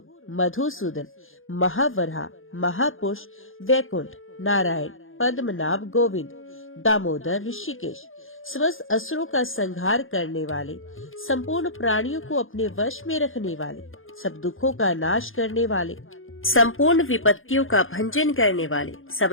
मधुसूदन, महावराह, महापुरुष, वैकुंठ, नारायण, पद्मनाभ, गोविंद, दामोदर, ऋषिकेश, समस्त असुरों का संहार करने वाले, संपूर्ण प्राणियों को अपने वश में रखने वाले, सब दुखों का नाश करने वाले, संपूर्ण विपत्तियों का भंजन करने वाले, सब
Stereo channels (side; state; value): right; late; 0.59 ms